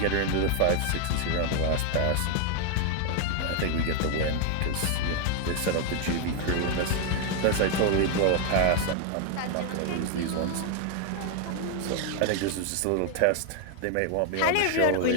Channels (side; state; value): both; different; correlation 0.00